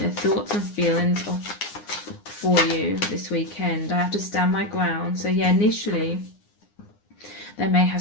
thoughts and feelings for you this weekend. I have to stand my ground. So yeah, initially they may have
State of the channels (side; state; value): right; late; 9.8 ms